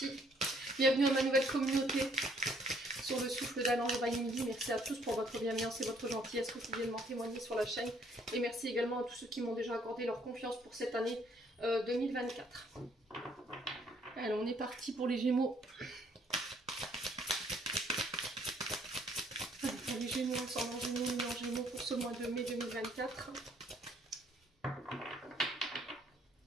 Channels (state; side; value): normal; both; correlation 0.64